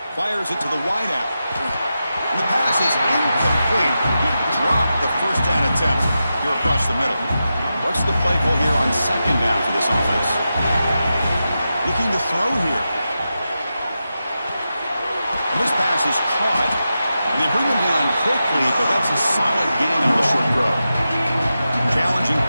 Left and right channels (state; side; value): inverted; both; correlation -0.90